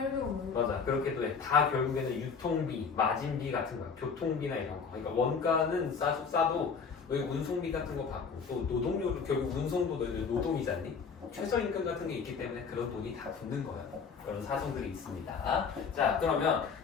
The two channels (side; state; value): right; quieter; 5.7 dB